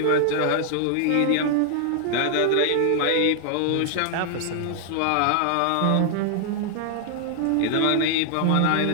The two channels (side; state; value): both; different; correlation 0.00